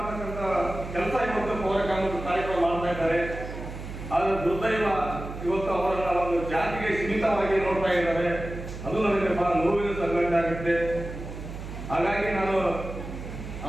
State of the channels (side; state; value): right; noise; hum, 9 dB below the sound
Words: ಕೆಲಸ ಇವತ್ತು ಪೌರ ಕಾರ್ಮಿಕ ಕಾರ್ಯಕ್ರಮ ಮಾಡ್ತಾ ಇದ್ದಾರೆ. ಆದ್ರೆ ದುರ್ದೈವ ಇವತ್ತು ಅವರನ್ನ ಒಂದು ಜಾತಿಗೆ ಸೀಮಿತವಾಗಿ ನೋಡ್ತಾ ಇದ್ದಾರೆ. ಅದು ನನಗೆ ಬಹಳ ನೋವಿನ ಸಂಘಟನೆ ಆಗುತ್ತೆ. ಹಾಗಾಗಿ ನಾನು